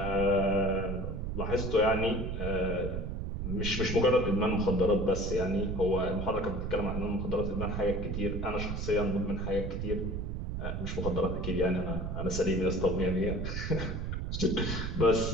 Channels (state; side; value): noise; right; rumble, 3 dB below the sound